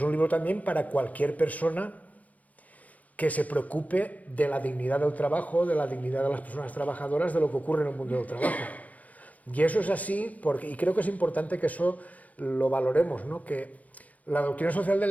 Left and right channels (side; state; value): right; late; 0.074 ms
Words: un libro también para cualquier persona que se preocupe de la dignidad del trabajo, de la dignidad de las personas trabajadoras, de lo que ocurre en el mundo del trabajo. Y eso es así, y creo que es importante que eso lo valoremos, ¿no? Que la doctrina social de